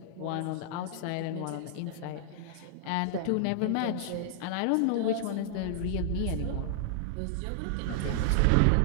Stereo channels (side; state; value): both; different; correlation -0.01